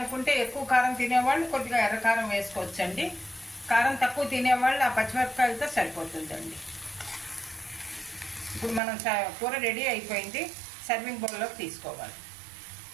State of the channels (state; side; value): drops out; left; at 8.8 s